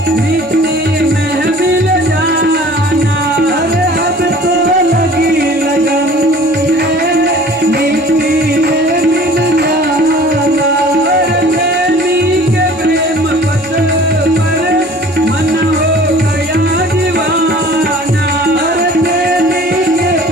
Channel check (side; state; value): both; normal; correlation 0.47